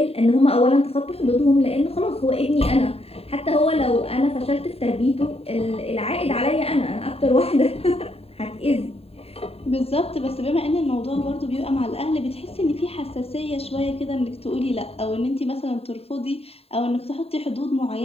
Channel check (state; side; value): late; right; 0.29 ms